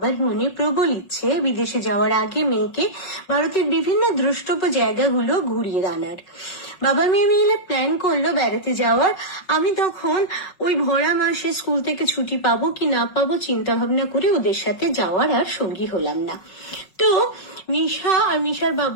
মনে প্রবল ইচ্ছে বিদেশে যাওয়ার আগে মেয়েকে ভারতের বিভিন্ন দ্রষ্টব্য জায়গাগুলো ঘুরিয়ে আনার। বাবা মেয়ে মিলে প্ল্যান করলো বেড়াতে যাওয়ার। আমি তখন ওই ভরা মাসে স্কুল থেকে ছুটি পাবো কি না পাবো চিন্তা ভাবনা করে ওদের সাথে যাওয়ার আর সঙ্গী হলাম না। তো মিশা আর মিশার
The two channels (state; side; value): late; right; 5.5 ms